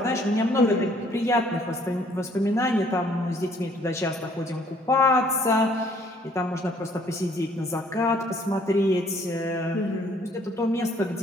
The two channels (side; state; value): both; normal; correlation 0.61